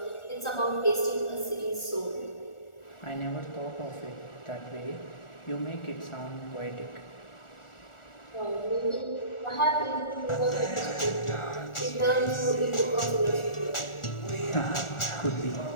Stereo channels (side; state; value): right; late; 1.4 ms